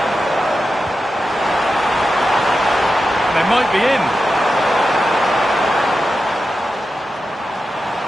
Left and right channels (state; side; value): normal; both; correlation 0.91